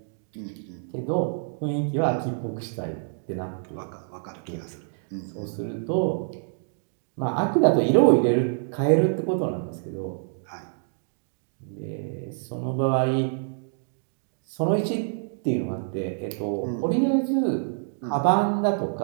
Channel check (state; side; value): silent; left; digital silence